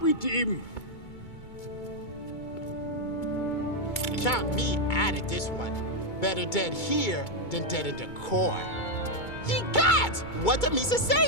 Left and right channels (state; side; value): late; right; 2.2 ms